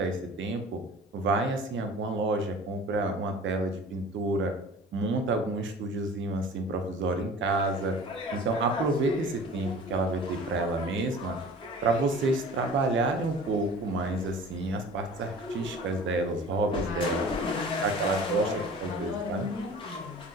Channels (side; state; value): both; normal; correlation 0.43